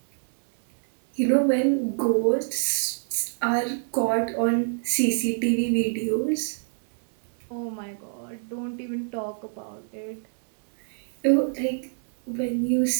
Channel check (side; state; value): left; silent; digital silence